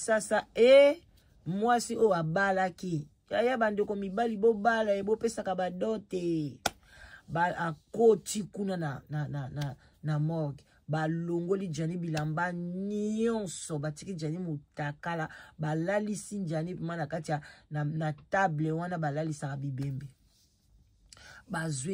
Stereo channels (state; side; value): identical; both; correlation 1.00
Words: mwasi o abalaki. Yaya bandeko mibali bo bala bo pesaka badote. Ba akoti kuna na morgue. Balongoli Jani bilamba nyonso batiki Jani mutakala balalisi Jani pima kati na table wana balalisa bibembe